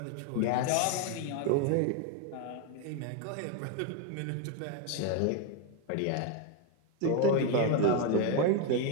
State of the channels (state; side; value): different; both; correlation 0.01